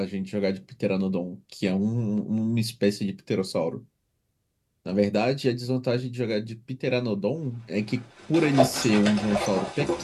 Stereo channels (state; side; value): identical; both; correlation 1.00